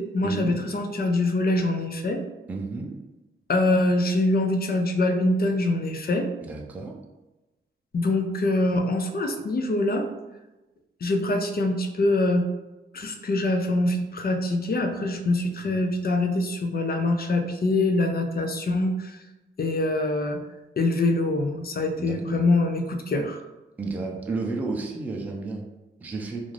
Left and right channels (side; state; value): both; normal; correlation 0.67